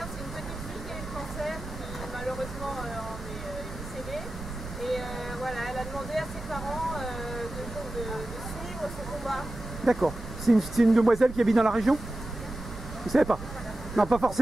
c'est une petite fille qui a eu le cancer, qui malheureusement en est décédée. Et voilà, elle a demandé à ses parents de suivre ce combat. D'accord. C'est une demoiselle qui habite dans la région? Vous savez pas? Non, pas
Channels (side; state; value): right; noise; rumble, 11 dB below the sound